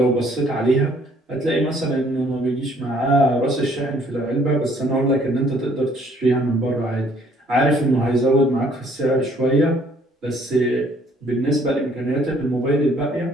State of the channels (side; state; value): both; normal; correlation 0.62